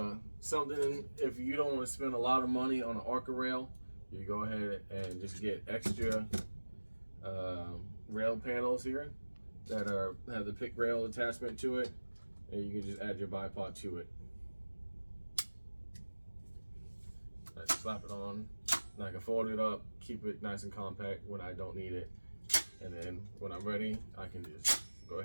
something, if you don't want to spend a lot of money on an Arca rail, you go ahead and just get extra rail panels here that have the pick rail attachment to it, and you can just add your bipod to it. I slap it on, and I can fold it up, keep it nice and compact when I don't need it, and then when I'm ready, I can just go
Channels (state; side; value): inverted; both; correlation -1.00